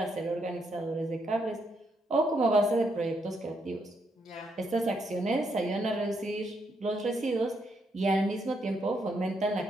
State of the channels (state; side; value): normal; both; correlation 0.77